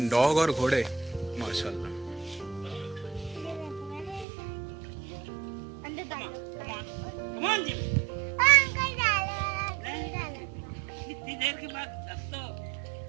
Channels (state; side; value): drops out; left; at 4.2 s